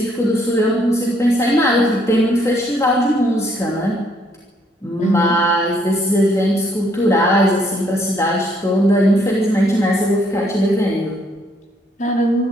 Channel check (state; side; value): normal; both; correlation 0.69